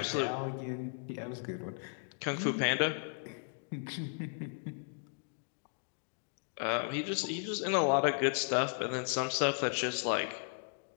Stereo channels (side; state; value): right; silent; 54 dB below the other